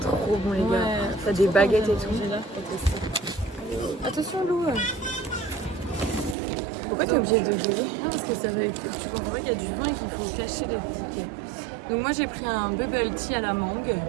bon, les gars. T'as des baguettes et tout. Attention Lou. Pourquoi t'es obligée de gueuler? Non parce que ça va, tu comprends qu'il y a du vin et qu'il faut cacher les tickets. Donc moi j'ai pris un bubble tea à la mangue,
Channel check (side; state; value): left; drops out; at 6.4 s